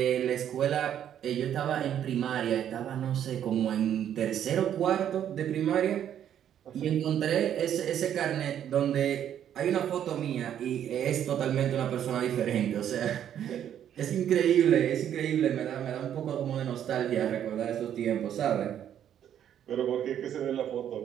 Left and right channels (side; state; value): left; quieter; 10.0 dB